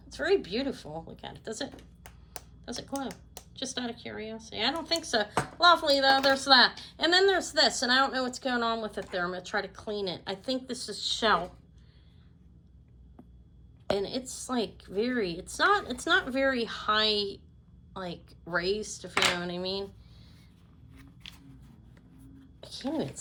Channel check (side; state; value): both; identical; correlation 1.00